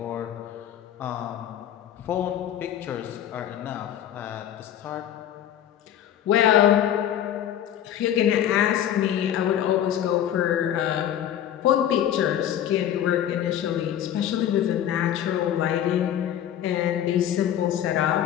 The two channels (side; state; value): right; quieter; 10.7 dB